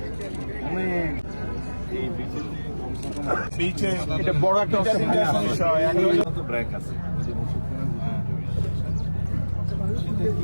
অনেক এই বিচে এটা বড় একটা ব্রেক আছে সেটা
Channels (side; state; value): both; inverted; correlation -1.00